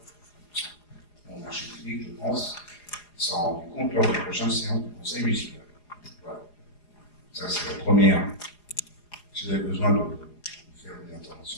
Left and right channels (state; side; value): late; right; 4.8 ms